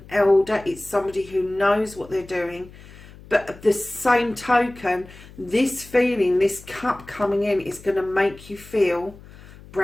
elder. It's somebody who knows what they're doing. But at the same token, this feeling, this cup coming in is going to make you feel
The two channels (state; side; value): noise; left; hum, 20 dB below the sound